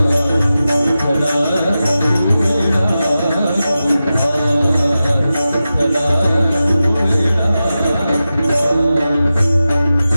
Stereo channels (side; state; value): both; inverted; correlation -0.93